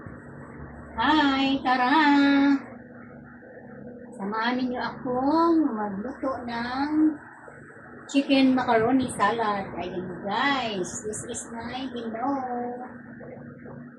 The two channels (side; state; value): both; identical; correlation 1.00